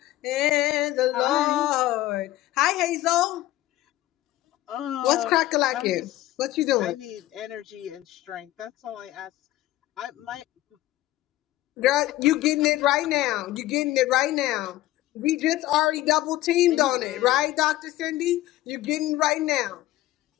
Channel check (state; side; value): quieter; right; 15.5 dB